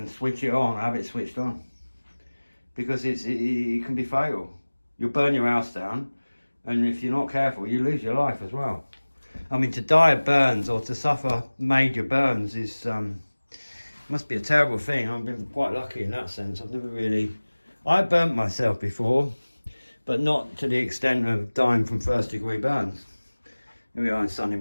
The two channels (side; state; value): both; inverted; correlation -1.00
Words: switch it on, have it switched on. Because it can be fatal. You'll burn your house down, and if you're not careful, you lose your life as well. I mean, to die of burns or to suffer major burns is must be a terrible thing. I've been quite lucky in that sense. I burnt myself before, but not to the extent of dying from first-degree burns. Here we are in sunny